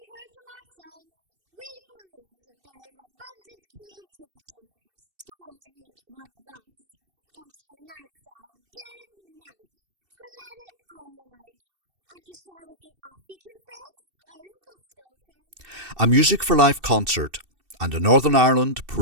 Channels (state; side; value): late; left; 2.7 ms